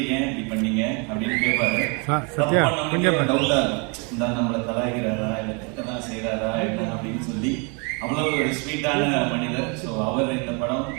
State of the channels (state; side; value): quieter; left; 33.2 dB